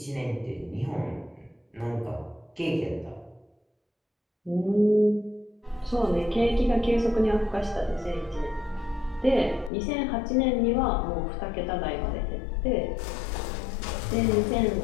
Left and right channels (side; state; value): right; drops out; at 9.7 s